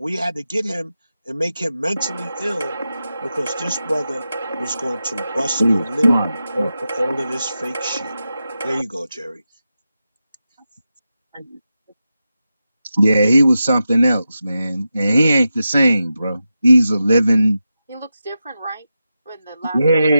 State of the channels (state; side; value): inverted; both; correlation -0.90